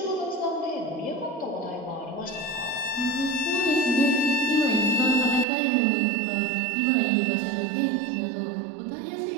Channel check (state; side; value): drops out; left; at 5.5 s